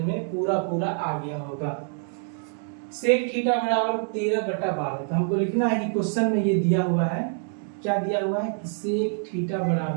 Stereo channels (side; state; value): left; silent; 56 dB below the other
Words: पूरा आ गया होगा। सेक थीटा बराबर 13/12। तो हमको लिखना है कि क्वेश्चन में ये दिया हुआ है, क्या दिया हुआ है कि सेक थीटा